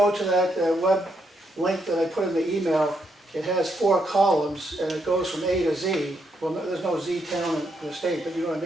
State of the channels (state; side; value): normal; both; correlation 0.78